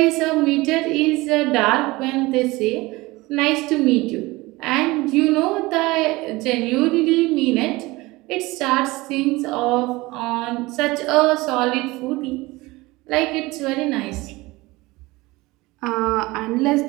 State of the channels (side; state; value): left; quieter; 21.3 dB